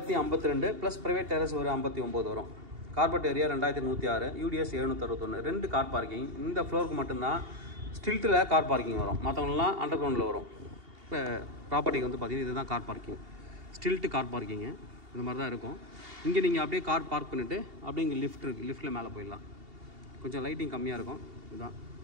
ப்ளஸ் ப்ரைவேட் டெரஸ் ஒரு 59 வரும். Carpet area 2106, UDS 761. 2 car parking. இந்த ஃப்ளோருக்கு மட்டும்தான் ஸ்டில்ட்டில் கார் பார்க்கிங் வரும். மற்றவங்களாம் அண்டர் கிரவுண்டில் வரும். இப்போ ப்ராப்பர்ட்டிக்கு வந்து பார்த்திங்கன்னா இதுதான் car parking. Stilt car parking இந்த மாதிரி தான் இருக்கும். இங்கே நீங்கள் அப்படியே கார் பார்க் பண்ணிவிட்டு அப்படியே இங்கே லிஃப்ட் இருக்குது. லிஃப்ட்டில் மேலே போயிடலாம். கொஞ்சம் லைட்டிங் கம்மியாக இருக்கும். இதுதான்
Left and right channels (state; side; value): late; left; 2.8 ms